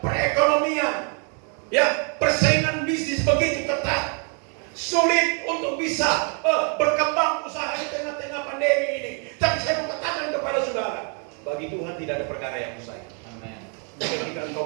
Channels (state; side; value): quieter; left; 39.6 dB